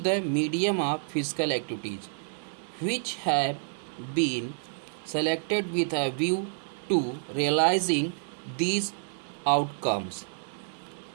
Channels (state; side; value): silent; left; digital silence